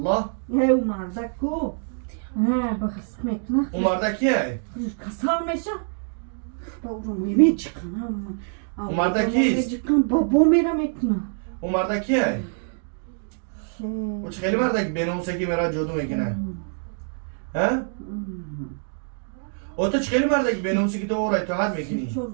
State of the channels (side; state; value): left; silent; 62 dB below the other